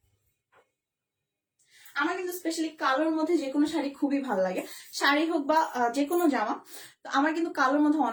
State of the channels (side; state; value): both; identical; correlation 1.00